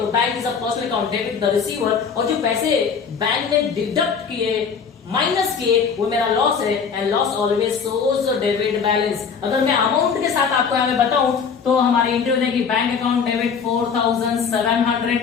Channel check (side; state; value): right; quieter; 6.2 dB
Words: bank is a personal account, debit the receiver, और जो पैसे बैंक ने डिडक्ट किए, माइनस किए, वो मेरा लॉस है। And loss always shows debit balance. अगर मैं अमाउंट के साथ आपको यहाँ बताऊं तो हमारी एंट्री हो जाएगी, bank account debit 4700,